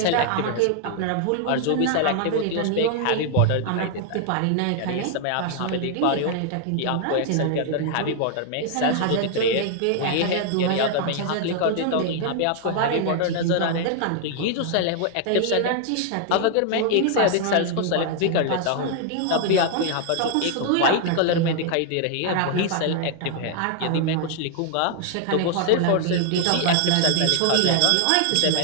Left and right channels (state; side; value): different; both; correlation 0.00